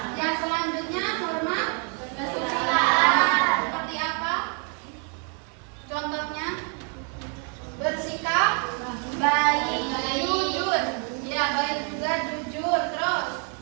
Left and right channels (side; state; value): left; quieter; 39.4 dB